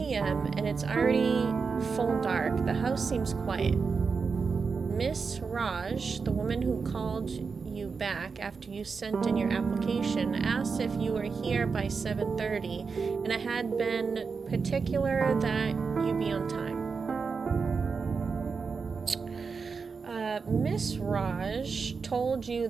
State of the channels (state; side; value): quieter; left; 5.1 dB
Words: and it's already full dark. The house seems quiet. Miss Raj, the woman who called you back after you sent in your application, asked if you were here by 7:30, and I had been particular that you be on time. Miss Raj told you